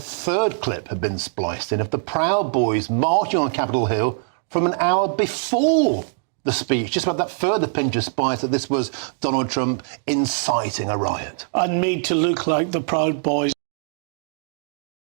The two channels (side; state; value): left; silent; 64 dB below the other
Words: clip had been spliced in of the Proud Boys marching on Capitol Hill from an hour before the speech, just about that further pinch of spice that this was Donald Trump inciting a riot. And made to look like the Proud Boys.